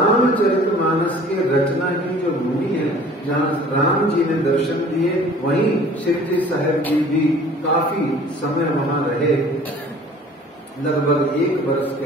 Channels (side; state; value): both; normal; correlation 0.49